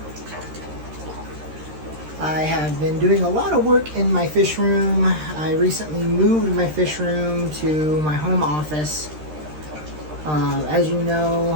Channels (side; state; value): left; late; 13 ms